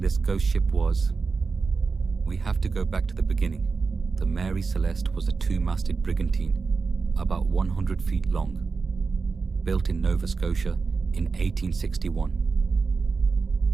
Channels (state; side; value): quieter; left; 4.6 dB